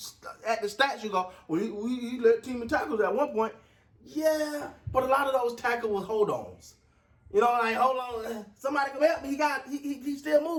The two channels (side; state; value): both; identical; correlation 1.00